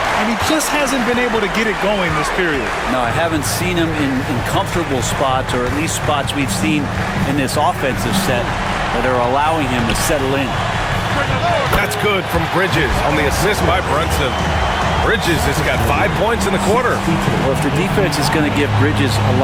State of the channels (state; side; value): identical; both; correlation 1.00